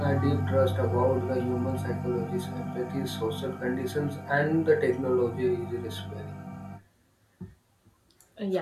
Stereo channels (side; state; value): both; identical; correlation 1.00